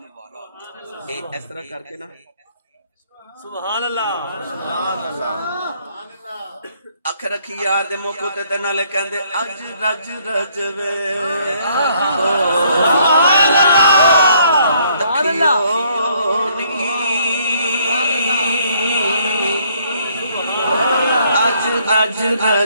اے اس طرح کر کے نا سبحان اللہ اکھ رکھی یار دے موقع تے نالے کہندے اج رج رجوے اج رج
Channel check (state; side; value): inverted; both; correlation -0.66